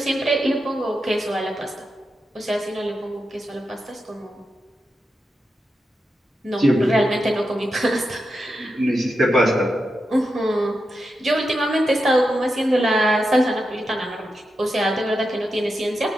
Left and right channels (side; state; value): both; normal; correlation 0.88